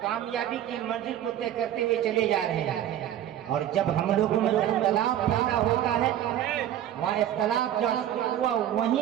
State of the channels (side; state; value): left; quieter; 11.4 dB